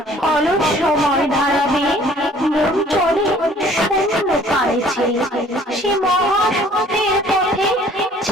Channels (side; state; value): both; normal; correlation 0.55